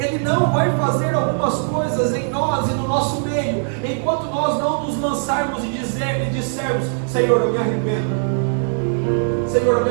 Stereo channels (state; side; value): silent; left; 66 dB below the other